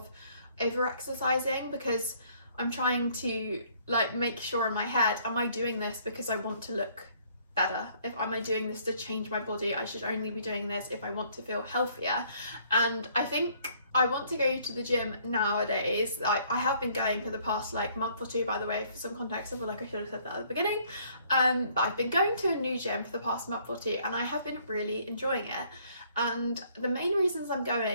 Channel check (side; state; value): both; inverted; correlation -0.63